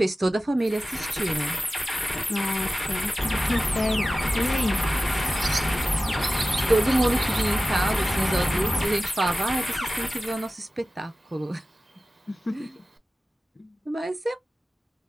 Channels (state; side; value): normal; both; correlation 0.95